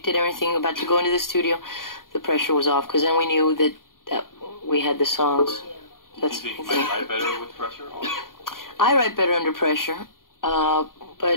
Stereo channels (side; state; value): right; late; 0.91 ms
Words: it, everything, about to go into the studio, the pressure was off. Because then we knew that we had the songs. That's Do you think you might write better with pressure? Or? I write better under pressure.